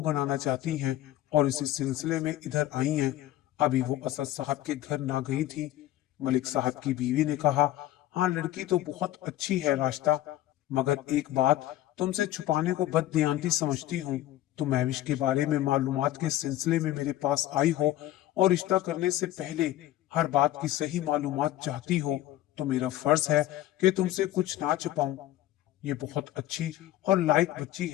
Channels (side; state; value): right; quieter; 14.1 dB